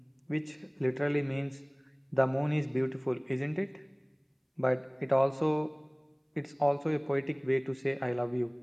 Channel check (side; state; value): both; identical; correlation 1.00